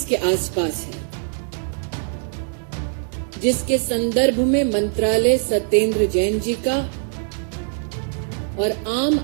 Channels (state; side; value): silent; left; digital silence